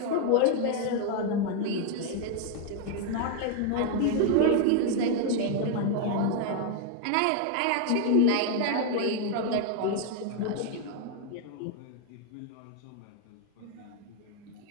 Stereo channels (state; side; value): different; both; correlation 0.00